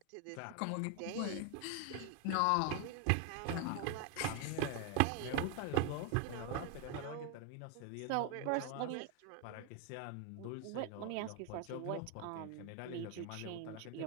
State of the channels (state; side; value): different; both; correlation 0.01